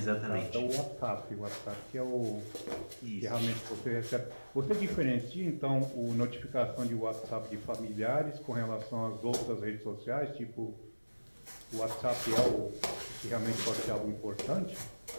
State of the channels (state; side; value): inverted; both; correlation -1.00